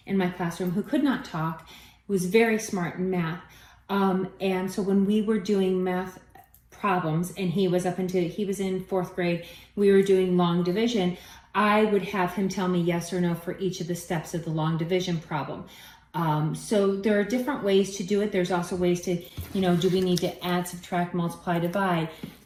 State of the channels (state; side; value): identical; both; correlation 1.00